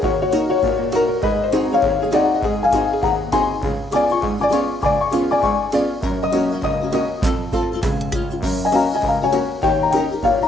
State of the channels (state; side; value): normal; both; correlation 0.74